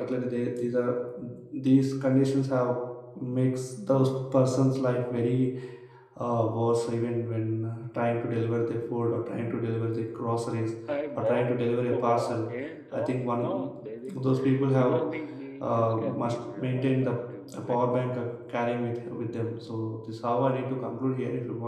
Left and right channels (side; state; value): both; identical; correlation 1.00